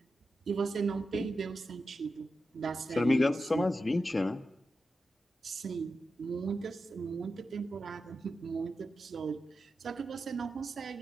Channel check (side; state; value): both; normal; correlation 0.90